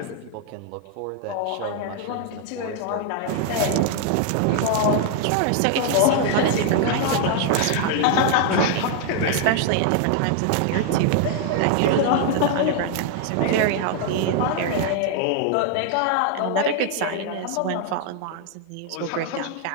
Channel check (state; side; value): different; both; correlation 0.00